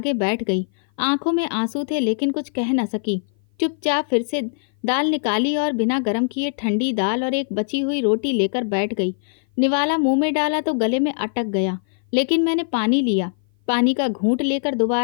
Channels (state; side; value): silent; right; 56 dB below the other